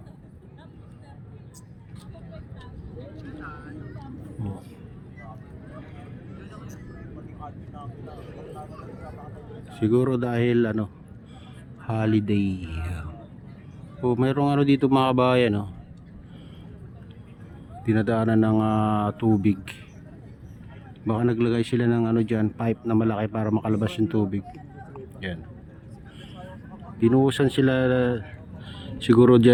Siguro dahil holiday. Mayroong dito mga kabayan, dinadaanan ng tubig. Baka naglagay sila ng diyan, pipe na malaki para makalabas yung tubig. Yan. Binuhusan sila siguro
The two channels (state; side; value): identical; both; correlation 1.00